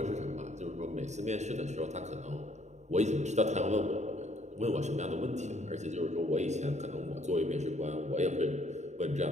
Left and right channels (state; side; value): late; left; 0.34 ms